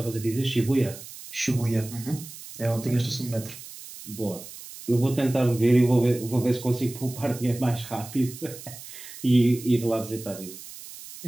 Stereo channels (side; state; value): right; noise; hiss, 14 dB below the sound